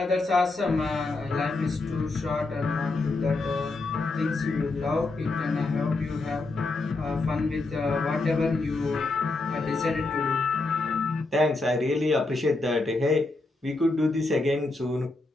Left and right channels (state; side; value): quieter; right; 3.3 dB